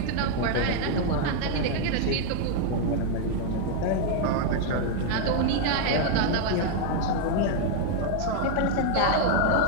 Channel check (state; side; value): different; both; correlation 0.00